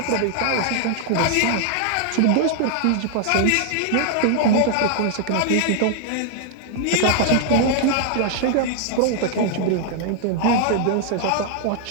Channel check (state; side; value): different; both; correlation -0.01